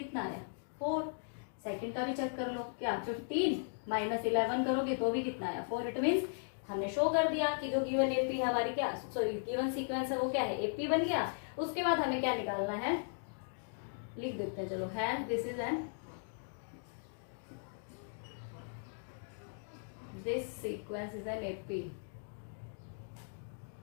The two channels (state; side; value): silent; right; digital silence